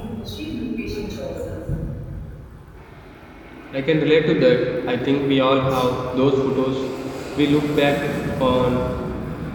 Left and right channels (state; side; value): identical; both; correlation 1.00